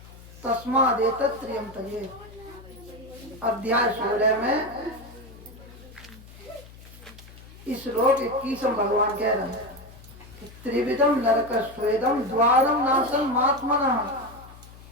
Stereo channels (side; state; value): left; noise; hum, 19 dB below the sound